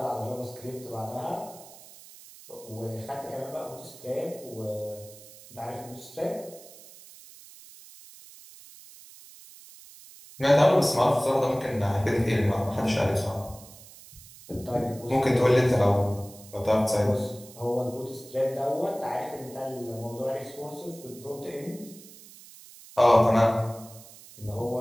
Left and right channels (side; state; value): right; noise; hiss, 20 dB below the sound